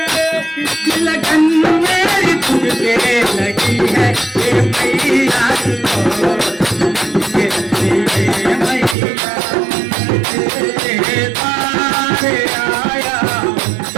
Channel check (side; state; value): left; drops out; at 9.0 s